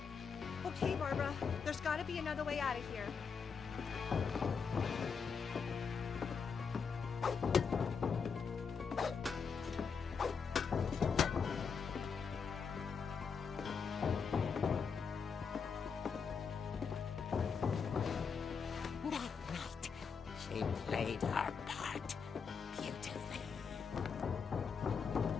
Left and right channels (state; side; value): quieter; right; 5.9 dB